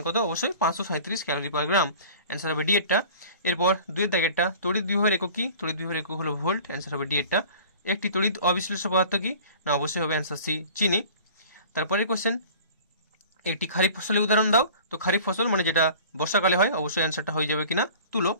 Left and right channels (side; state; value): both; inverted; correlation -0.44